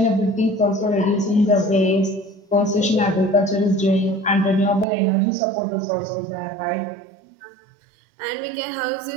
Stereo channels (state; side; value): drops out; left; at 4.9 s